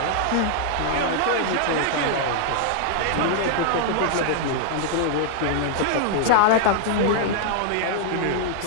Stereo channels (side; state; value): both; different; correlation 0.00